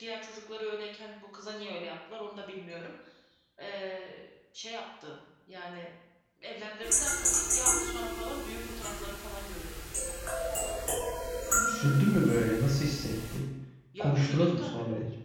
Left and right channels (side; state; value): both; identical; correlation 1.00